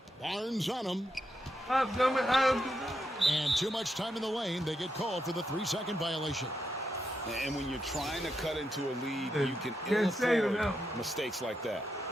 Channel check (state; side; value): normal; both; correlation 0.83